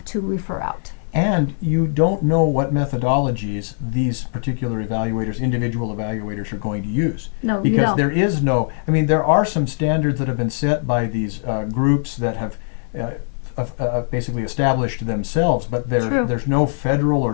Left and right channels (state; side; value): silent; right; digital silence